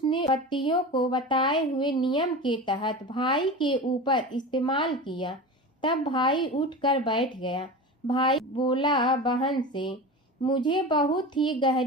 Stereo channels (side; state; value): both; normal; correlation 0.29